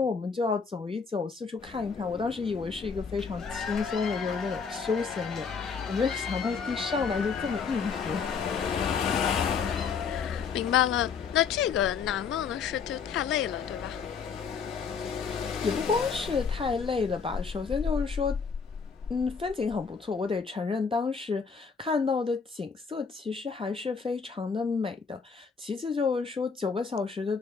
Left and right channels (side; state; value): right; quieter; 5.7 dB